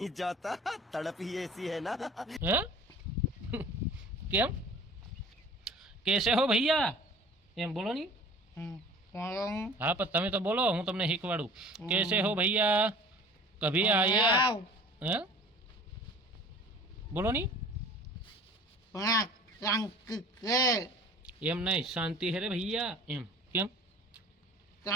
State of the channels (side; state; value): both; normal; correlation 0.45